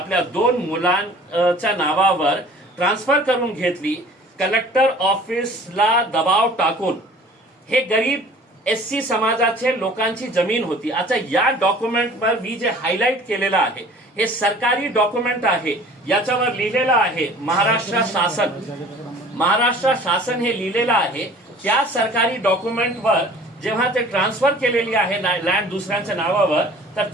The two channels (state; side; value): normal; both; correlation 0.48